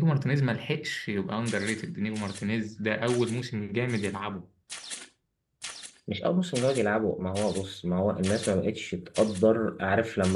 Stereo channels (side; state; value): both; identical; correlation 1.00